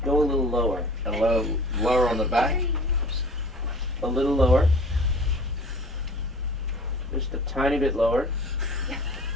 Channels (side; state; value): both; normal; correlation 0.44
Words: Go a little lower. A little lower on the back. A little lower. Just a tiny bit lower.